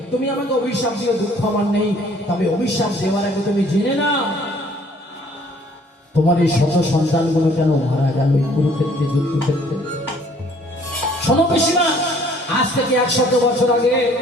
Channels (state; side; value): normal; both; correlation 0.58